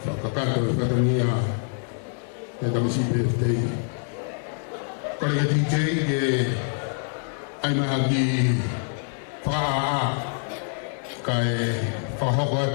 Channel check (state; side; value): silent; right; 61 dB below the other